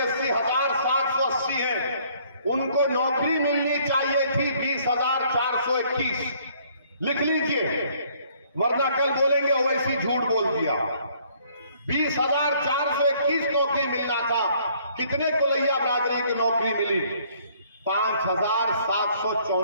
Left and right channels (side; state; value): both; inverted; correlation -0.62